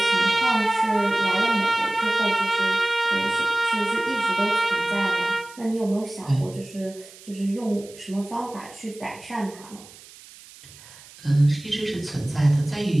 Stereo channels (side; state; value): right; noise; hiss, 20 dB below the sound